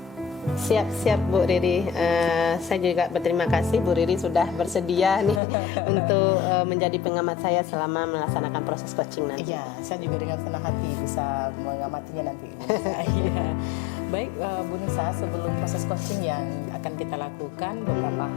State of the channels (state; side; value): drops out; right; at 5.4 s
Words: Siap-siap Bu Riri. Saya juga berterima kasih Bu Riri sudah bersedia nih untuk menjadi pengamat saya selama melaksanakan proses coaching nanti. Iya, saya juga dengan senang hati bisa mengamatinya nanti Bu Nisa. Iya. Baik Bu Nisa, sebelum proses coaching yang akan kita lakukan, beberapa